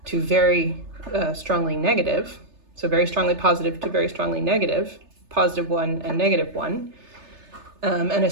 to very strongly negative, so very strongly positive to very strongly negative, positive 1 and negative 1, and a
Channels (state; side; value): late; left; 3.3 ms